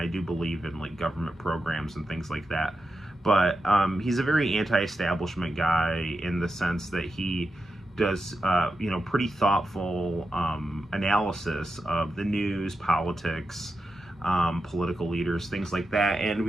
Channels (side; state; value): both; normal; correlation 0.89